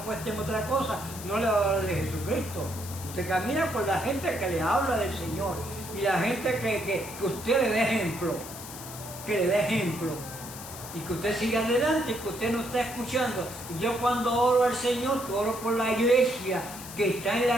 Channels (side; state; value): left; noise; hiss, 12 dB below the sound